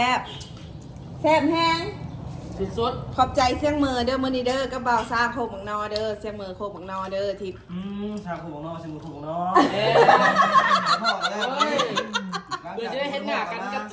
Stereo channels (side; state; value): both; identical; correlation 1.00